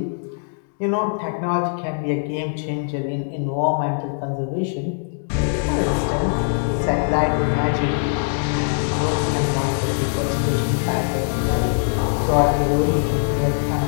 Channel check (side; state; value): right; silent; digital silence